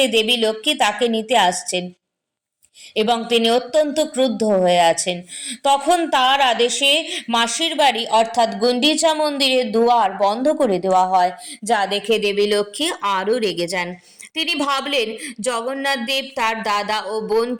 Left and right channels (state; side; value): identical; both; correlation 1.00